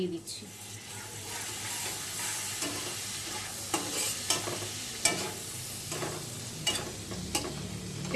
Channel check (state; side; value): identical; both; correlation 1.00